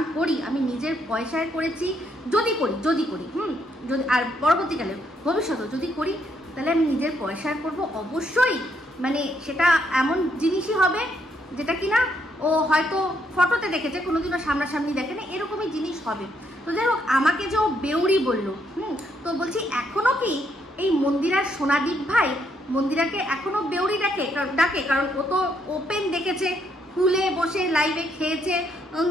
করি আমি নিজের পয়সায় করেছি, যদি করি যদি আর পরবর্তীকালে ভবিষ্যতে যদি করি তাহলে আমি নিজের পয়সায় করব অবশ্যই। মানে সেটা এমন জিনিসই হবে যেটা কিনা ও হয়তো ফটোতে দেখেছে, কোনোদিনও সামনাসামনি দেখে না, এরকমই জিনিস হবে। তো যাই হোক, আমাকে যে ও বেউরি বললো, তো বলছি এখনো কি এই মন্দিরার সোনাদীপ ভাই মন্দিরাকে এখনো বেউরি ডাকে? কারণ ও তো ওপেন দেখেছে, খুলে বসে লাইভে খেয়েছে,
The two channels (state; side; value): normal; both; correlation 0.74